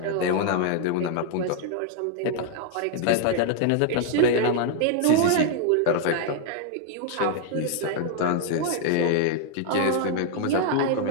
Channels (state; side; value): different; both; correlation 0.00